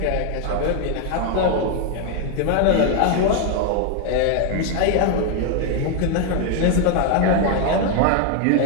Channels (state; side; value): different; both; correlation 0.00